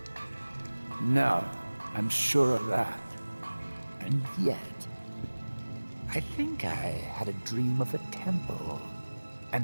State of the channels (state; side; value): inverted; both; correlation -1.00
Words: No, I'm sure of that. And yet, I think I had a dream of a temple,